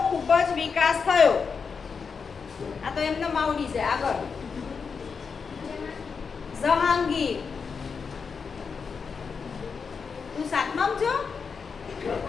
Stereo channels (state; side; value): quieter; right; 5.6 dB